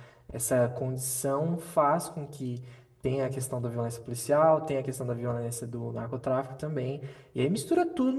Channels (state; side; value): identical; both; correlation 1.00